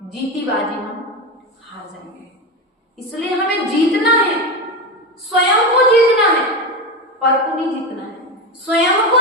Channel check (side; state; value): both; normal; correlation 0.18